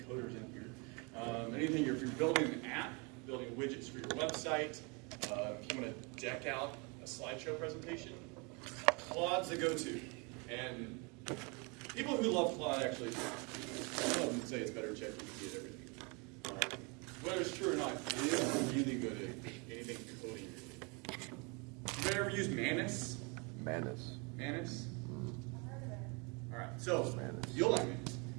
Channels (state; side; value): quieter; left; 31.2 dB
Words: coders in here. Anything, if you're building an app, building widgets for your website, if you want to deck out a slideshow presentation, Claude's the go-to. And people who love Claude actually, some of them say it's better than ChatGPT at everything. Whether it's true or not, it is really good at anything coding related. You ever used Manus? Manus. Manus? I've heard of it. All right, so Manus. you'll like